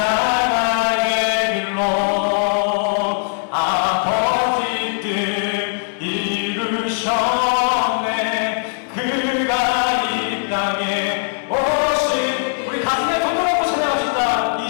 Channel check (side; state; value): right; silent; 66 dB below the other